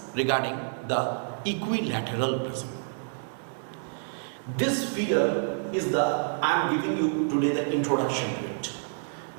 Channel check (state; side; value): silent; left; digital silence